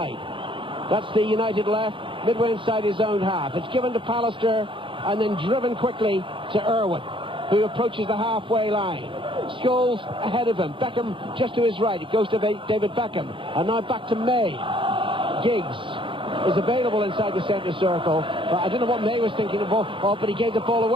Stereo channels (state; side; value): late; left; 0.25 ms